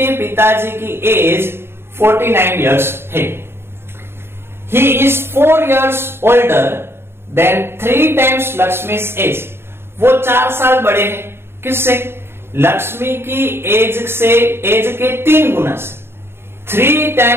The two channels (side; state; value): left; late; 0.11 ms